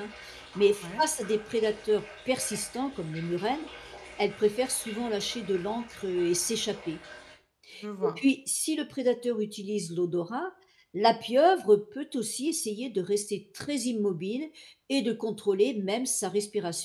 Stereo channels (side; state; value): both; identical; correlation 1.00